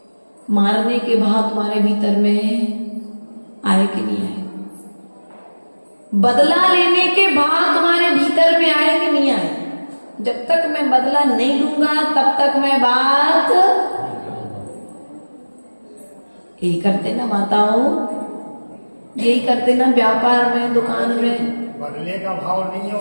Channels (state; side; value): inverted; both; correlation -1.00